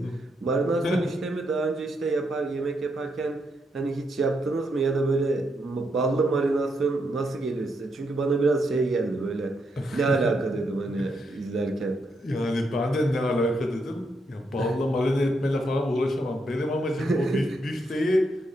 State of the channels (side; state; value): both; normal; correlation 0.79